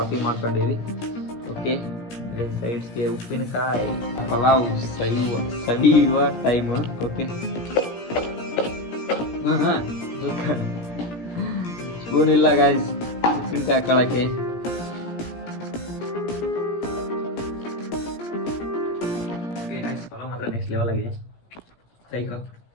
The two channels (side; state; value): right; late; 17 ms